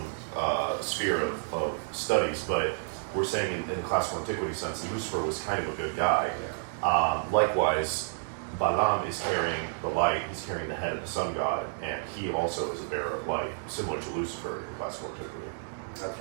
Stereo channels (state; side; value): silent; left; digital silence